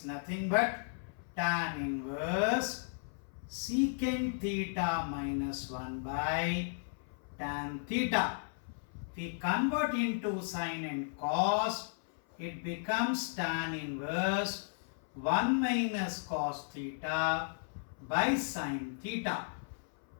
nothing but tan inverse secant theta minus 1 by tan theta. If we convert into sine and cos, it becomes tan inverse 1 minus cos theta by sine theta.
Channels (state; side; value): silent; right; 54 dB below the other